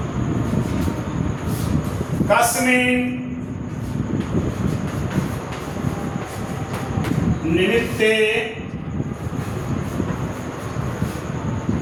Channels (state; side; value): identical; both; correlation 1.00